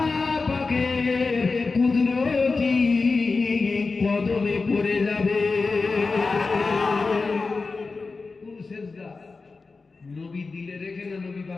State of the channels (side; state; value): right; quieter; 4.1 dB